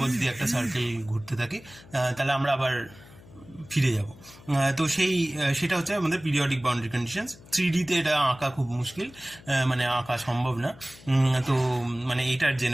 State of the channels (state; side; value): noise; left; hum, 22 dB below the sound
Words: যদি একটা সার্কেল ঘুরতে থাকে তাহলে আমরা আবার ফিরে যাব। তো সেটা হচ্ছে আমাদের পিরিয়ডিক বাউন্ডারি কন্ডিশনস। 3D-তে এটা আঁকা খুব মুশকিল, মানে আঁকা সম্ভব না। তো মানে এইটার